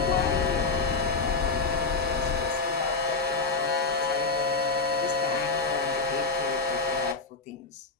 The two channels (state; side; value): quieter; right; 4.1 dB